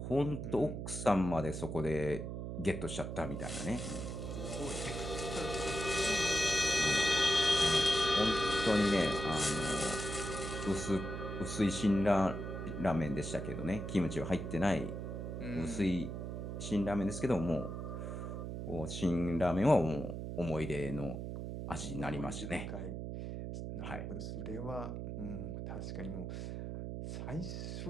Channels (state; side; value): noise; right; hum, 5 dB below the sound